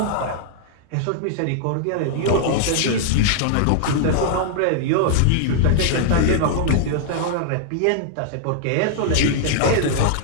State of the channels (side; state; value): both; different; correlation -0.01